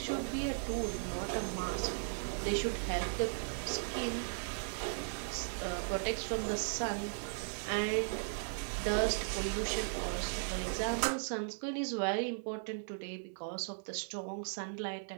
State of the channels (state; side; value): silent; left; 53 dB below the other